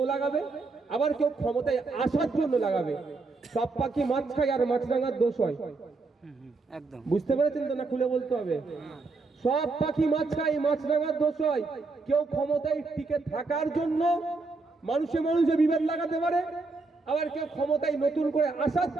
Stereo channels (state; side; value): quieter; left; 3.8 dB